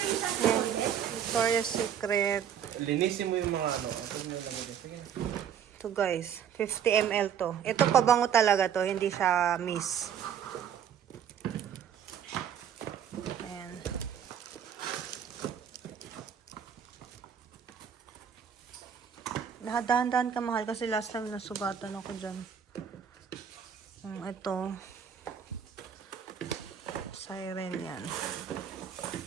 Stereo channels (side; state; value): left; quieter; 8.6 dB